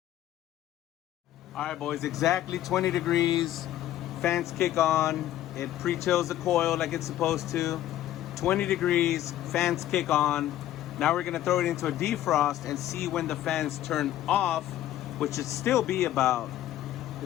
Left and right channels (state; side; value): quieter; right; 13.1 dB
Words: All right, boys, exactly 20 degrees. Fans kick on. It pre-chills the coil like it's supposed to. 20 degrees, fans kick on. Now we're gonna throw it into a defrost and see when the fans turn off, which should still be about,